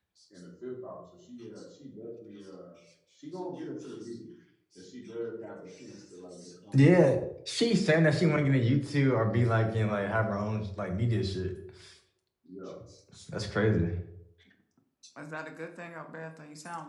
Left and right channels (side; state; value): both; identical; correlation 1.00